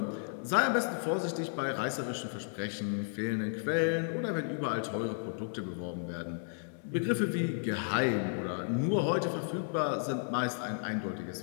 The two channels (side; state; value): right; silent; 56 dB below the other